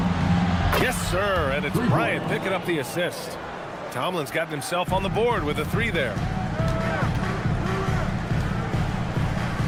Yes, sir, and it's Bryant picking up the assist. Tomlin's gotten himself on the board with a three there.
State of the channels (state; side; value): identical; both; correlation 1.00